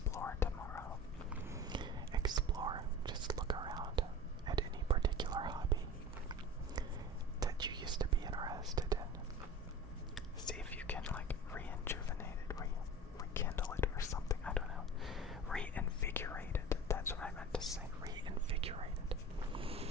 tomorrow. Explore. Just look around at any particular hobby that you used to be interested in. See if you can like rejuvenate it, rekindle it or something. I don't know. Reinvigorate it. That's what I meant to say. Reinvigorate it.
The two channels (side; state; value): both; normal; correlation 0.36